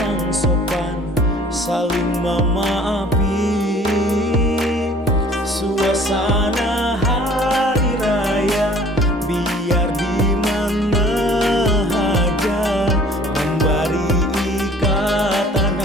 sopan, saling memaafi. Suasana hari raya biar di mana aja, memberi ikatan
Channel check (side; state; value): both; normal; correlation 0.52